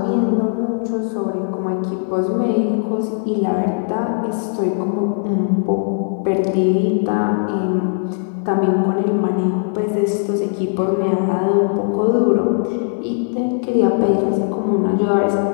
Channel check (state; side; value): silent; right; 67 dB below the other